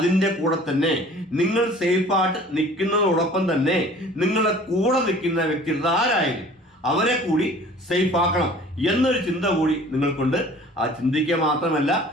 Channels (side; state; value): both; normal; correlation 0.48